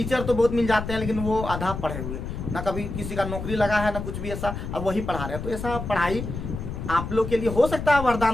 तो बहुत मिल जाते हैं, लेकिन वो आधा पढ़े हुए, ना कभी किसी का नौकरी लगा है ना कुछ भी ऐसा, अब वही पढ़ा रहे हैं। तो ऐसा पढ़ाई आप लोग के लिए हो सकता है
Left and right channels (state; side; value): noise; left; rumble, 6 dB below the sound